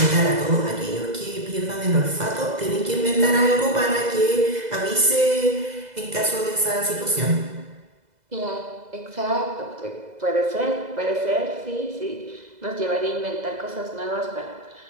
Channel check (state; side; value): late; left; 2.0 ms